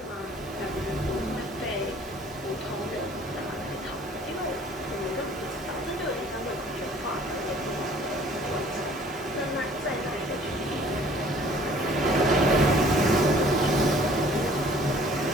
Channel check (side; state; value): both; normal; correlation 0.53